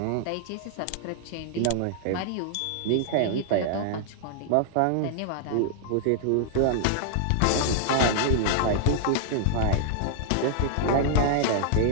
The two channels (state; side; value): different; both; correlation -0.01